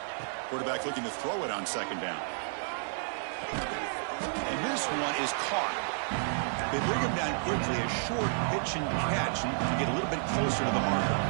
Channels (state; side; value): silent; left; 57 dB below the other